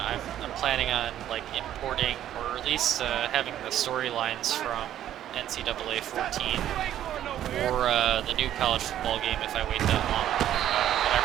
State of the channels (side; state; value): left; quieter; 11.6 dB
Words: planning on like importing or at least having the storylines from NCAA 14 or the new college football game if I wait that long. But I